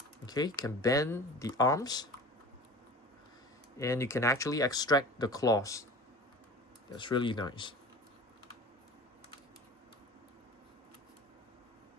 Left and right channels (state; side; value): normal; both; correlation 0.38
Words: Okay, you can bend the arms and you can actually extract the claws. That's really nice.